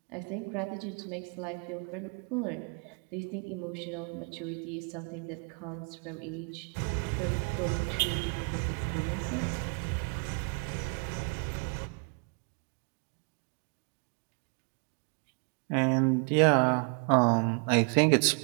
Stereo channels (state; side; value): quieter; left; 38.3 dB